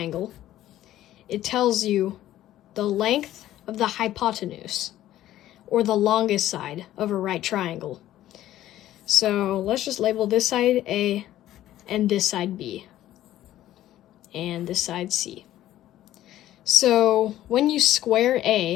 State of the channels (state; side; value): quieter; right; 13.5 dB